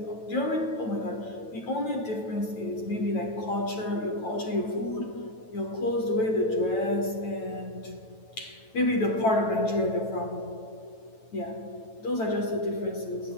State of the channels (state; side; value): late; right; 9.1 ms